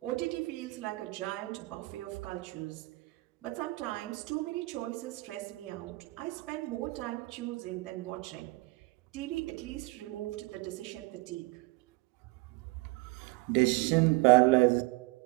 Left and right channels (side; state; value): left; quieter; 23.0 dB